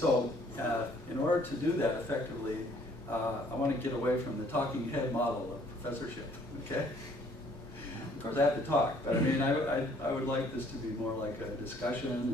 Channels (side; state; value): both; normal; correlation 0.61